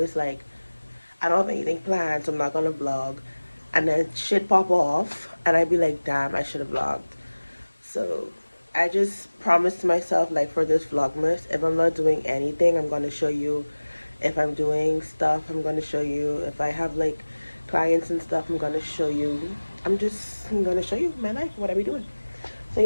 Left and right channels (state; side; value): inverted; both; correlation -1.00